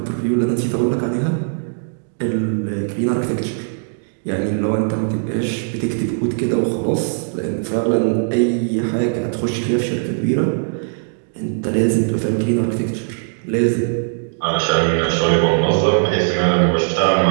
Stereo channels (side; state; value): left; silent; digital silence